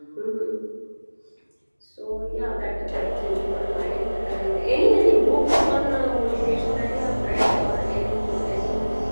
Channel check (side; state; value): both; inverted; correlation -1.00